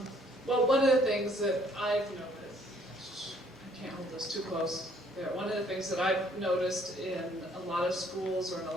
one of the things that I've noticed, I can't hold this too close. Yeah, one of the things that I've noticed in a lot of schools or in a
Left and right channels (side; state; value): both; normal; correlation 0.62